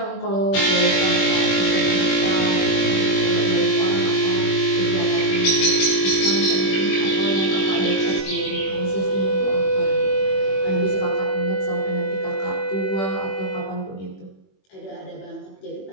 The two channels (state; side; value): late; right; 21 ms